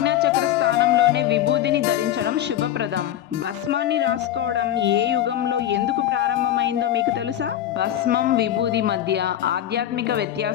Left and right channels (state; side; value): quieter; right; 11.7 dB